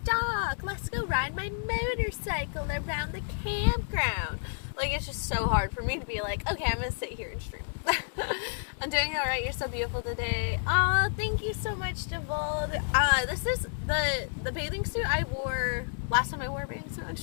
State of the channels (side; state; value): right; silent; 58 dB below the other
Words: dock, let's go ride my motorcycle around the campground. Like, it's just so hard for me to be like, okay, I'm gonna sit here and stream. I'm doing alright, you're so beautiful today. Oh, thank you so much, Devold. This is the bathing suit I wore last time I wore a bathing suit on